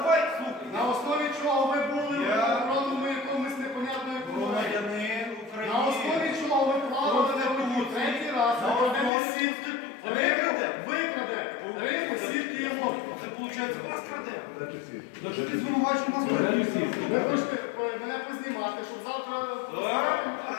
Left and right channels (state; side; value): drops out; right; at 9.1 s